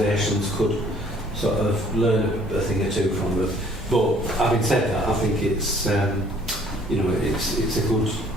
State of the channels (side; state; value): both; normal; correlation 0.58